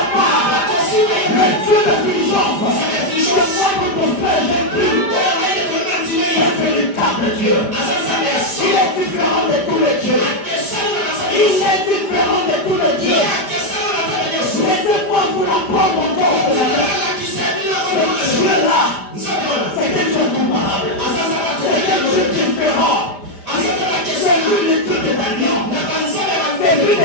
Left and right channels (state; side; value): late; right; 5.0 ms